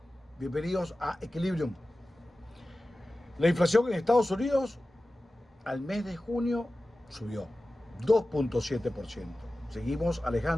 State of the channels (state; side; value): normal; both; correlation 0.95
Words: Bienvenidos a Equilibrium. La inflación en Estados Unidos al mes de junio subió 2.7%. Seguimos